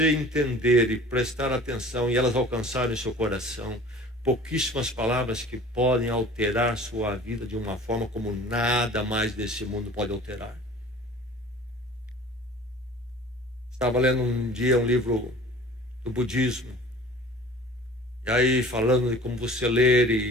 entender e prestar atenção e elas alcançarem o seu coração, pouquíssimas palavras que podem alterar sua vida de uma forma como nada mais desse mundo pode alterar. Estava lendo um dia um livro do budismo, e aí falando de como você ler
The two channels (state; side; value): normal; both; correlation 0.45